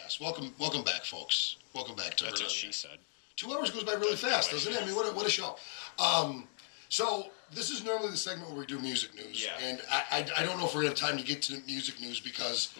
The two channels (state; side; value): silent; right; digital silence